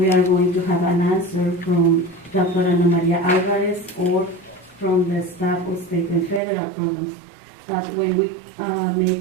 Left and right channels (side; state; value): left; drops out; at 6.4 s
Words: are going to have an answer from Dr. Ana Maria Alvarez or from the staff of state and federal programs. But when we